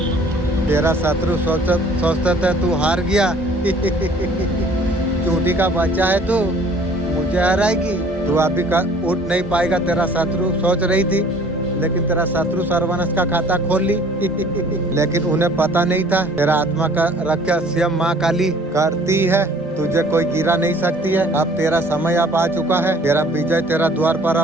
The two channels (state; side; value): normal; both; correlation 0.53